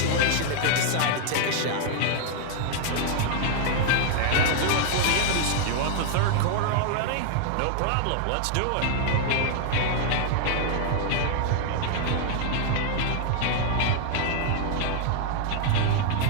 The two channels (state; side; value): different; both; correlation -0.01